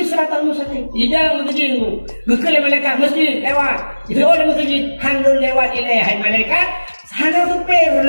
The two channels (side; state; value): both; inverted; correlation -1.00